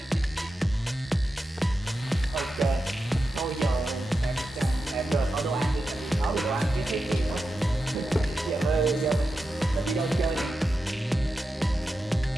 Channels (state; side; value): normal; both; correlation 0.90